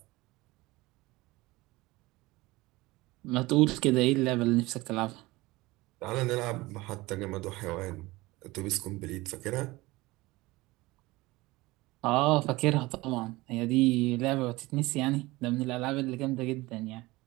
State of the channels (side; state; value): left; quieter; 20.7 dB